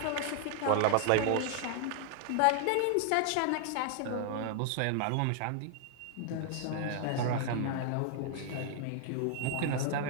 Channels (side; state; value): both; different; correlation 0.00